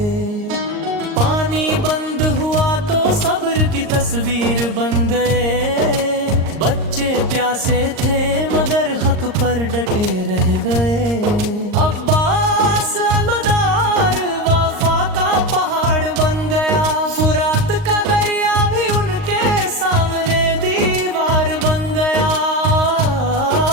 پانی بند ہوا تو صبر کی تصویر بن گئے، بچے پیاسے تھے مگر حق پر ڈٹے رہ گئے۔ عباس الوداع وفا کا پہاڑ بن گیا، فرات کا دریا بھی ان کے سامنے دیوار بن گیا۔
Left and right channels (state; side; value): late; left; 38 ms